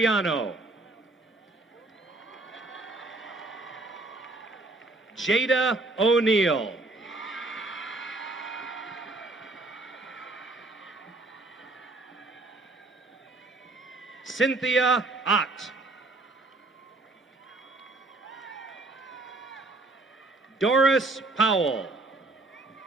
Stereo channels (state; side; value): quieter; left; 3.0 dB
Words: Jada O'Neill. Cynthia Ott. Doris Powell.